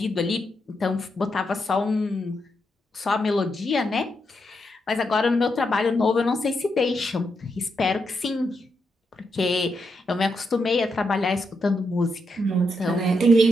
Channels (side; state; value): both; normal; correlation 0.82